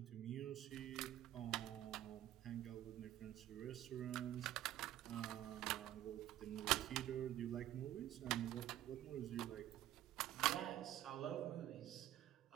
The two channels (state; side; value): quieter; left; 12.9 dB